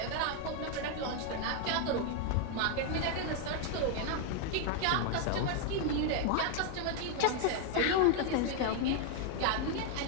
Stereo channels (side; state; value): both; different; correlation 0.00